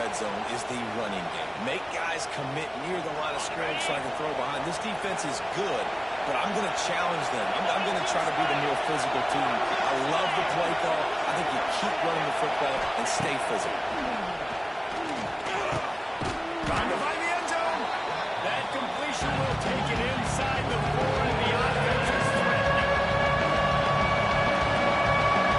zone is the running game. Make guys commit near the line of scrimmage so I can throw behind. This defense is good, but I'm going to challenge them. I'm going to try to be the more physical team. I love the play call. I think you keep running the football and stay physical. Trying to find the end zone. That completion will take it inside the 4, and the offense is threatening.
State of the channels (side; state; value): both; identical; correlation 1.00